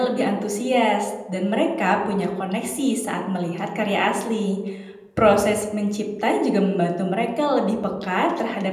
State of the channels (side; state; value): both; identical; correlation 1.00